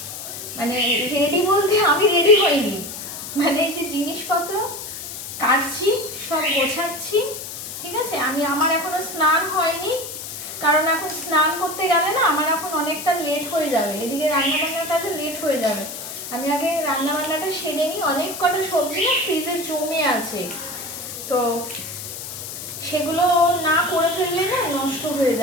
মানে রেডি বলতে আমি রেডি হইনি, মানে এই যে জিনিসপত্র কাটছি, সব গোছাচ্ছি। ঠিক আছে, আমার এখনো স্নান হয়নি, কারণ এখন স্নান করতে গেলে না আমার এখন অনেকটা লেট হয়ে যাবে, এদিকে রান্নাবান্নার কাজে লেট হয়ে যাবে। আমি আগে রান্নাবান্নাটা সেরে নিই। অনেক কটা সবজি না ফ্রিজে জমে আছে, তো সেগুলো না করে ফেললে না নষ্ট হয়ে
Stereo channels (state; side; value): noise; left; hiss, 9 dB below the sound